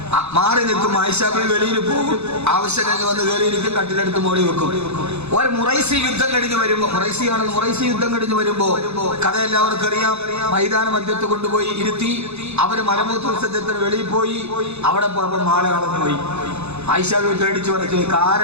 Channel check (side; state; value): left; late; 0.81 ms